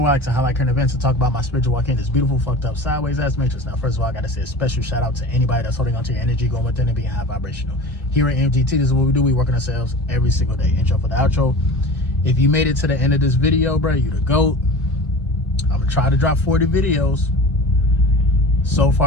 where I like to highlight current events and talk about my spiritual walk in this beautiful, fucked up, sideways ass matrix. Now, first of all, I gotta say a special shout out to anybody that's holding onto your energy, going within and being high vibrational. Here at MGT, this is what we do. We work on ourselves every single day. Intro for the outro. If you made it to the end of this video, bro, you the GOAT. I'm gonna try to drop 40 videos. So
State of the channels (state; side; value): normal; both; correlation 0.36